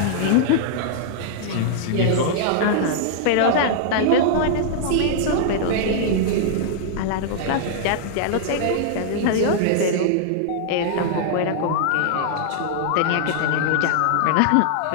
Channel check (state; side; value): different; both; correlation -0.01